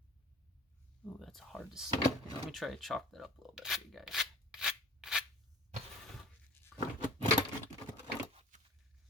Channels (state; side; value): normal; both; correlation 0.44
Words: Ooh, that's hard to see. Let me try to chalk that up a little bit for you guys.